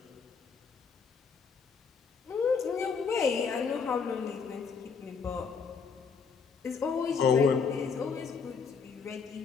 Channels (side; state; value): right; quieter; 5.7 dB